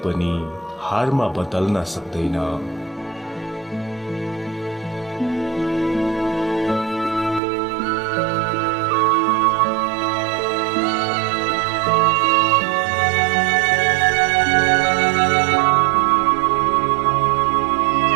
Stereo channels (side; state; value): left; drops out; at 7.4 s